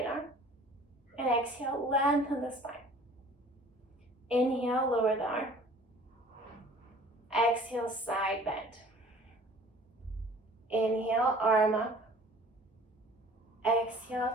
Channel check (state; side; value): normal; both; correlation 0.50